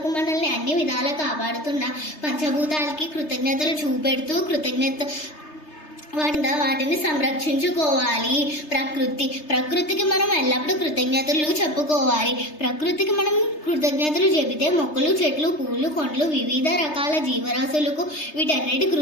మనల్ని అన్ని విధాలా కాపాడుతున్న పంచభూతాలకి కృతజ్ఞతలు చూపెడుతూ వాటిని సంరక్షించుకోవాలి. ప్రకృతికి మనం ఎల్లప్పుడూ కృతజ్ఞతలు చెప్పుకోవాలి. ప్రకృతికి మనం కృతజ్ఞతలు చెబితే మొక్కలు, చెట్లు, పూలు, కొండలు, వివిధ రకాల జీవరాశులకు వీటన్నిటి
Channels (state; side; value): late; right; 3.3 ms